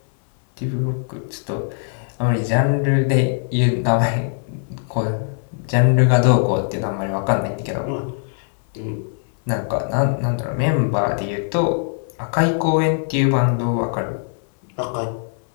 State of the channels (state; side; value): silent; right; 65 dB below the other